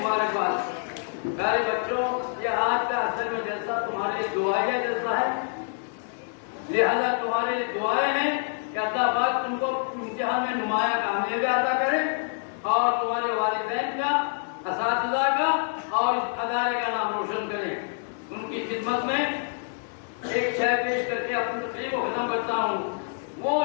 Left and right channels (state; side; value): silent; right; digital silence